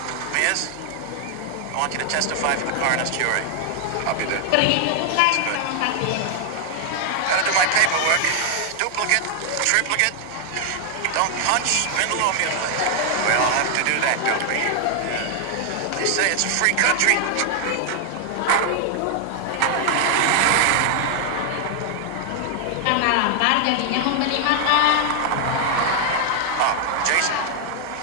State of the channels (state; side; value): different; both; correlation 0.00